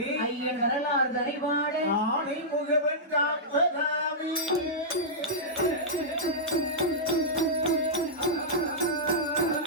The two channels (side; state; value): both; normal; correlation -0.13